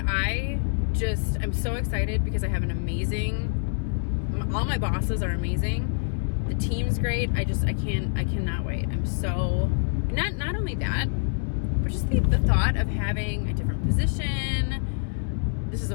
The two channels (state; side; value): silent; right; digital silence